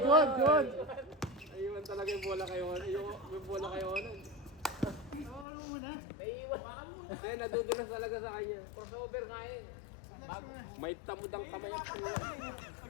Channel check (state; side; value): drops out; right; at 5.5 s